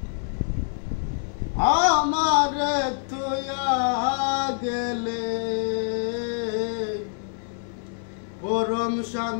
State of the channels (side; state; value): right; silent; digital silence